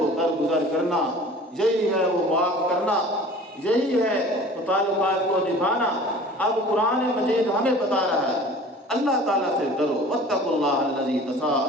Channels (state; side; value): normal; both; correlation 0.44